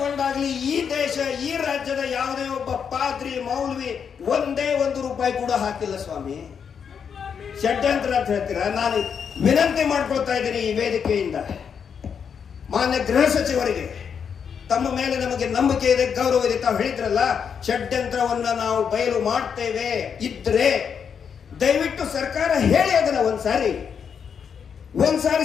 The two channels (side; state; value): right; quieter; 7.0 dB